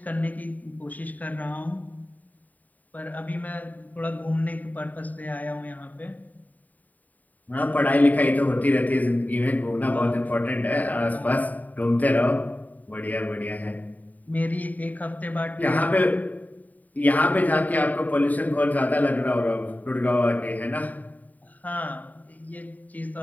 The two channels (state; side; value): late; right; 0.077 ms